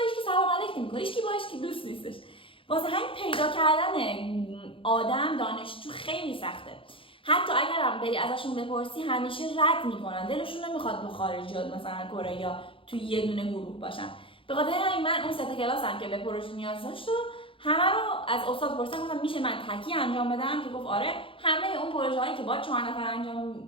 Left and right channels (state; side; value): late; right; 0.25 ms